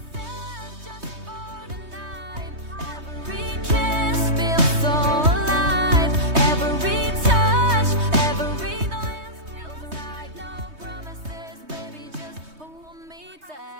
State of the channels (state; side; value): late; left; 3.2 ms